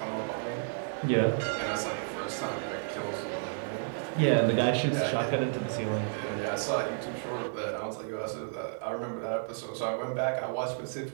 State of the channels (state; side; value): silent; left; digital silence